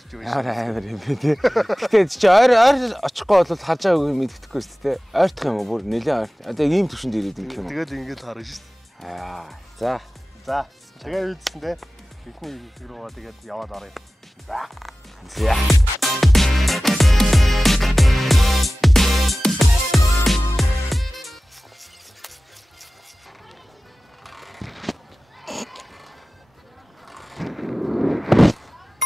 Амар юм бэ тийм. Гэтэ чи ойр очихгүй бол харж байгаагүй юм мэддэхгүй шүү дээ. Ойртох юм уу? Бүр нэлээд ойр. Одоо ийм төвшөнд ирээд юм юм. Тэгээд ингэж харна шүү. За. Тэгээд үйдсэн те. Эхний хэсэг рүү тэгээд яваад оръё. За.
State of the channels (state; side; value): normal; both; correlation 0.96